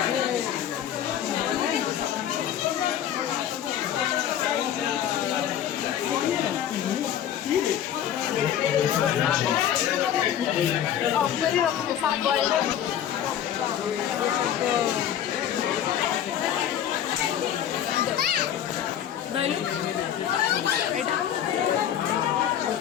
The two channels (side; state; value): right; quieter; 10.2 dB